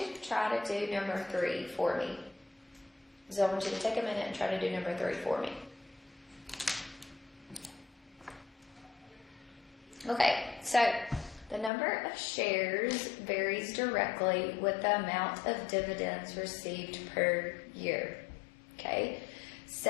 to try to do number 3 for me. So I want you to take a minute and try to do number 3 for me. Okay, so the number of shares varies directly with the amount of dividends received per year. Okay,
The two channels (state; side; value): drops out; right; at 11.7 s